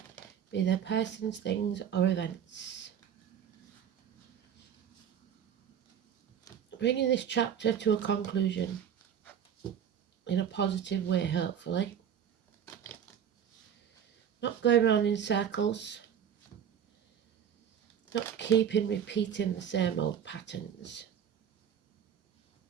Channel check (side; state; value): left; quieter; 8.6 dB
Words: be they persons, things or events. Bringing this chapter to a conclusion in a positive way, hopefully. Not going around in circles. Not repeating the same old patterns.